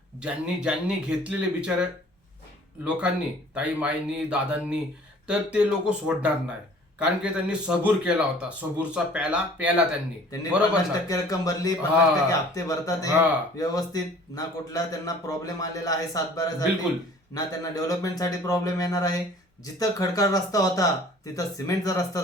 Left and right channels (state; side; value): normal; both; correlation 0.51